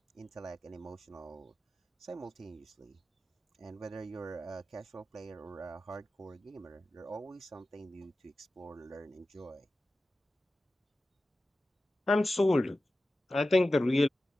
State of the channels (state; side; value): normal; both; correlation 0.94